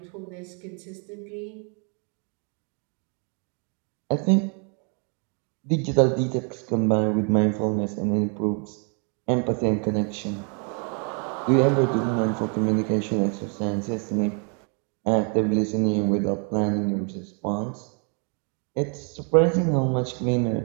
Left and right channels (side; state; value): left; quieter; 38.7 dB